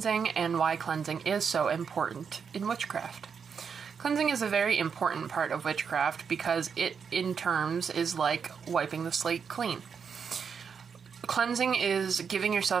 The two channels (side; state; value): left; quieter; 6.5 dB